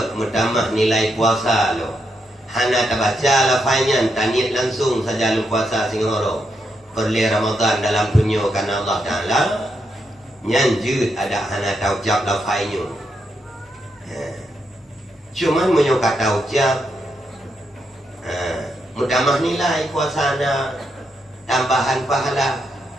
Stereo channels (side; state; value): both; normal; correlation 0.81